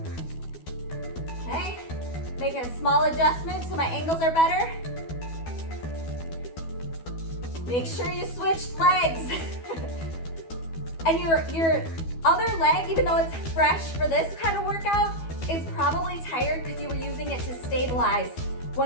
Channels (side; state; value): right; late; 12 ms